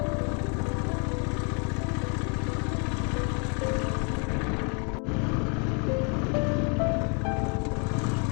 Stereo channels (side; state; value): right; quieter; 37.0 dB